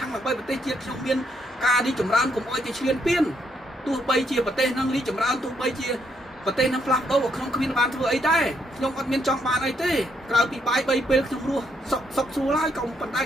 ាំងដើម្បីប្រទេសជាតិខ្ញុំមានការរីកចម្រើនកុំឲ្យគេឈ្លានពានទោះបីជាប្រទេសហ្នឹងរីកចម្រើនទោះបីជាប្រទេសហ្នឹងផ្លាស់ប្ដូរក្នុងគ្មានបានធ្វើអីដែរខ្ញុំអត់មានចង់បានអីទេក្រៅពីបាយ3ពេលខ្ញុំរស់សុខស្រួលហើយក៏ប៉ុន្តែ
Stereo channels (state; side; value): normal; both; correlation 0.74